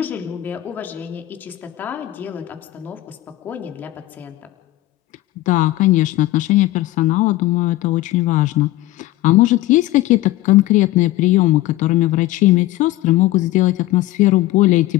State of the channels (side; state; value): right; quieter; 16.7 dB